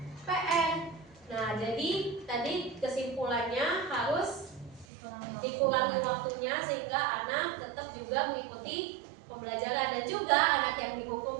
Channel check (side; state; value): left; drops out; at 4.9 s